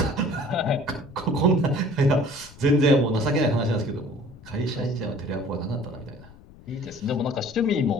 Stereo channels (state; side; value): noise; left; rumble, 21 dB below the sound